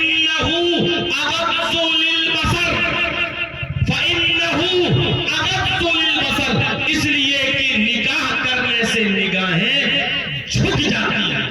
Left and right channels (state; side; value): identical; both; correlation 1.00